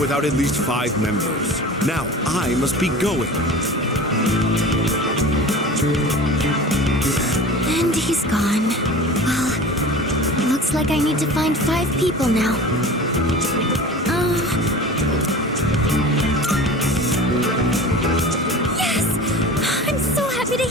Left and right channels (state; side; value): normal; both; correlation 0.37